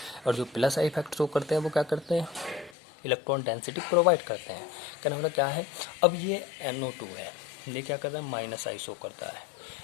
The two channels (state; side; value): drops out; right; at 2.8 s